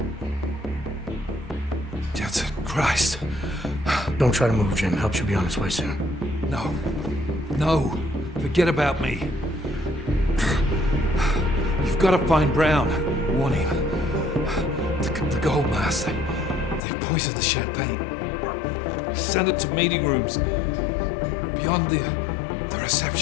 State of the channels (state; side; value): drops out; right; at 16.8 s